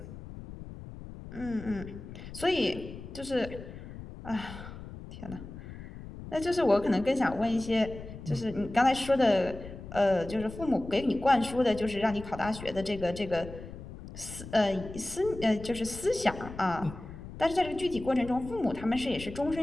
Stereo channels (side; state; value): left; noise; rumble, 13 dB below the sound